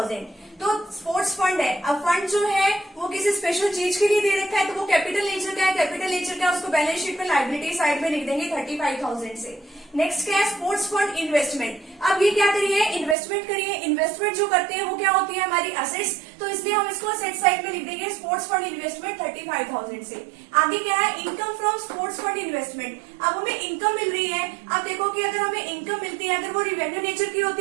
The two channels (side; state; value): left; drops out; at 13.2 s